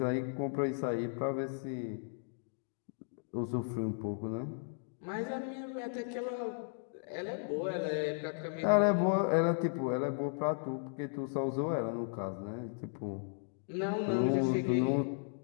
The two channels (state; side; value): silent; right; digital silence